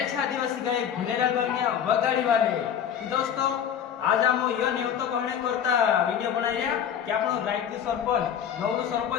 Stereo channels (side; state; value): right; quieter; 8.8 dB